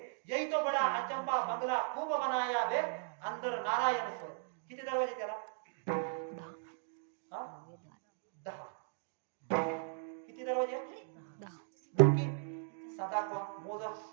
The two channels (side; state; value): left; silent; digital silence